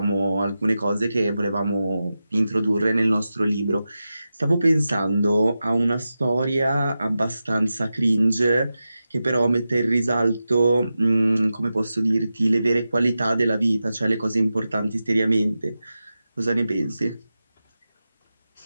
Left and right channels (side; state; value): both; inverted; correlation -0.92